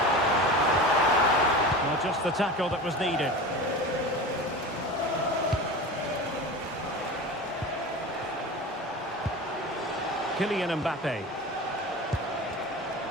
Just the tackle that was needed. Kylian Mbappe.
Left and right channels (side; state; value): both; normal; correlation 0.31